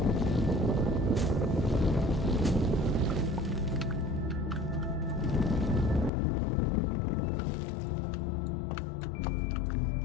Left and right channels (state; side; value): drops out; right; at 6.1 s